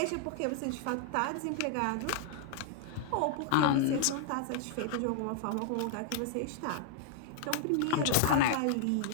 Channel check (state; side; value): different; both; correlation -0.01